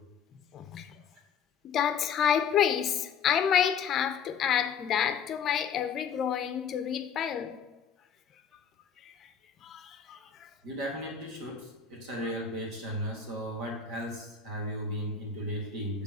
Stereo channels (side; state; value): right; quieter; 6.9 dB